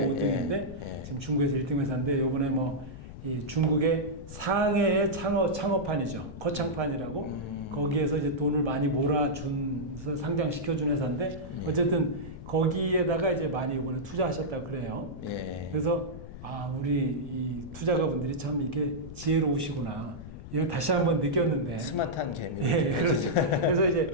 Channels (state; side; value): noise; left; rumble, 12 dB below the sound